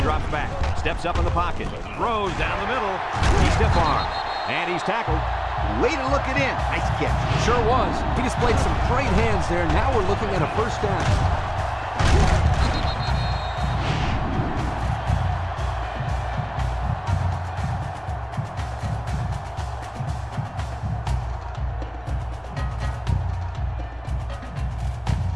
drops back, steps up in the pocket, throws down the middle. He's stiff-armed, and he's tackled. Way to look it in. Nice catch. Sure was. He displayed some great hands there. Now we're looking at a 1st down.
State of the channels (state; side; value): identical; both; correlation 1.00